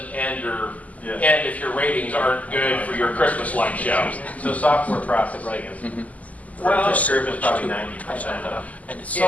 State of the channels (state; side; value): late; right; 0.074 ms